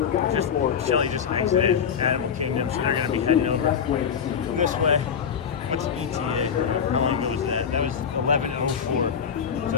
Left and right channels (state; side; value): quieter; right; 7.3 dB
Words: Shelly just exited Animal Kingdom, so they're gonna be heading over this way. What's ETA? How long ago was that? That was 11:04. So